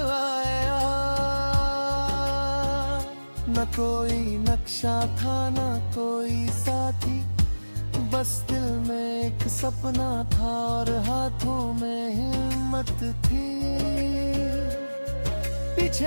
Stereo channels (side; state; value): both; inverted; correlation -1.00